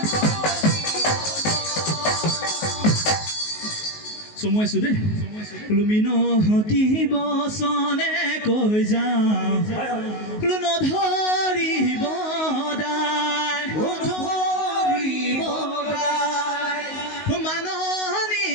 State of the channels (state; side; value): late; right; 19 ms